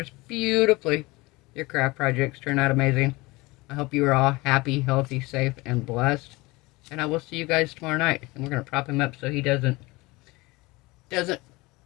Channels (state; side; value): quieter; right; 22.7 dB